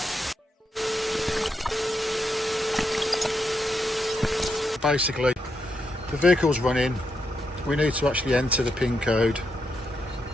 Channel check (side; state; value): both; normal; correlation 0.82